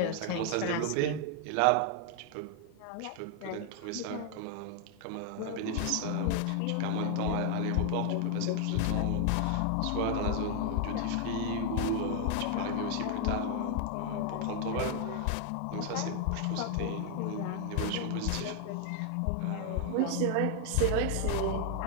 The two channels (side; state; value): both; different; correlation 0.00